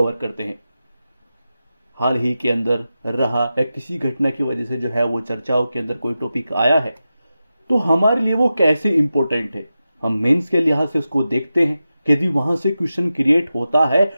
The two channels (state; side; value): inverted; both; correlation -0.92